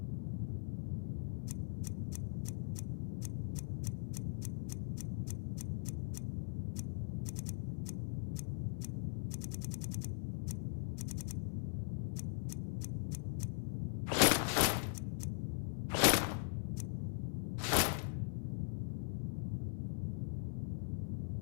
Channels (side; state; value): right; silent; 51 dB below the other